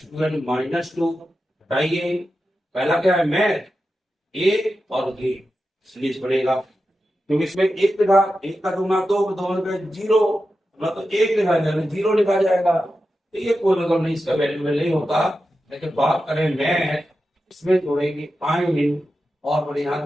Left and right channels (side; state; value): both; normal; correlation 0.91